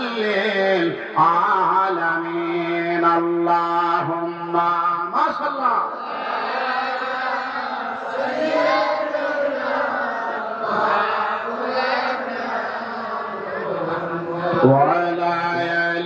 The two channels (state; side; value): identical; both; correlation 1.00